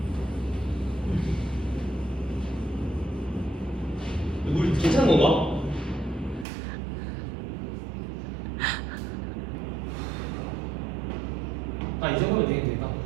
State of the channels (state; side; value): drops out; left; at 6.5 s